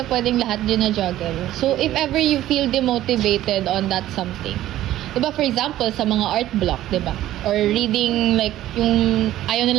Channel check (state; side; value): quieter; left; 13.9 dB